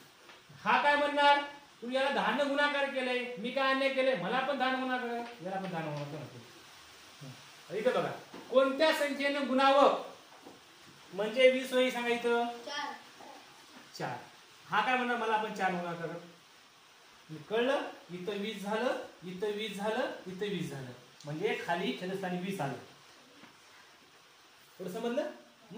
हा काय म्हणणार? तू याला 10 ने गुणाकार केलंय, मी काय अन्याय केलंय? मला पण 10 ने गुणाकार, याला पण 10 ने गुणाकार. इथं बघा कोणत्या संख्येनं गुणावं म्हणजे 20 होईल सांगा? इथं 4. हा काय म्हणणार? मला पण 4 गुणाकार. कळलं? इथं 20 झालं, इथं 20 झालं, इथं 20 झालं, म्हणजे खाली छेदस्थानी 20 आलं. थोडं समजलं?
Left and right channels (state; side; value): identical; both; correlation 1.00